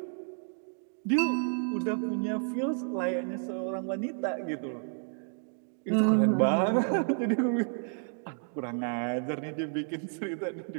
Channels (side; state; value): left; silent; 57 dB below the other